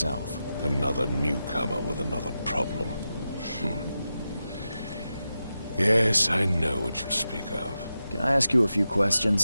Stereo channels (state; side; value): inverted; both; correlation -0.91